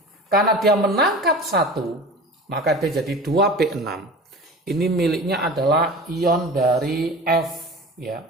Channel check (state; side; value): normal; both; correlation 0.36